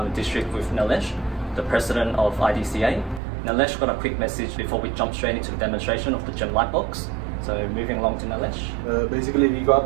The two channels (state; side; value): drops out; left; at 3.2 s